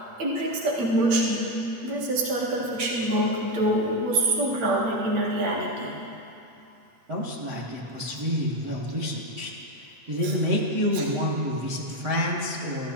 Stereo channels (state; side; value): late; left; 8.6 ms